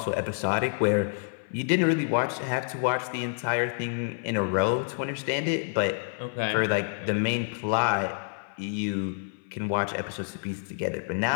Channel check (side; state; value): right; silent; 59 dB below the other